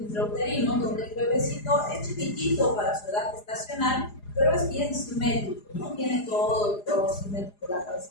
intrauterino, donde el bebecito es chiquitito para su edad gestacional, pero es bien simétrico, ¿no? Tiene todo simétrico, la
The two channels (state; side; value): late; right; 4.9 ms